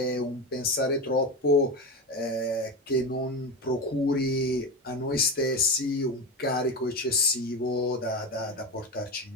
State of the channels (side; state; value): both; normal; correlation 0.20